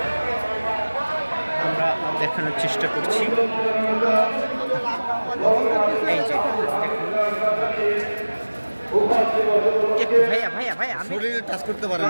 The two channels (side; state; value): both; inverted; correlation -1.00